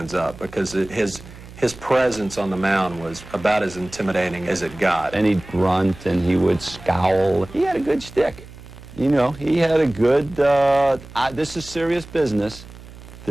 up because his presence on the mound was about as intimidating as it got. And he'd grunt and he would scowl. He had a good shtick. You know, he had a good, this is serious business.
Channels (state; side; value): noise; right; hum, 18 dB below the sound